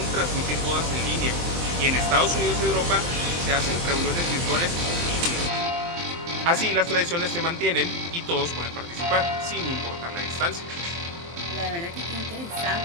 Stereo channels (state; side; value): late; left; 23 ms